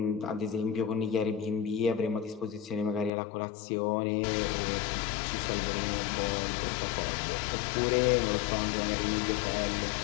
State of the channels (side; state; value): right; drops out; at 3.1 s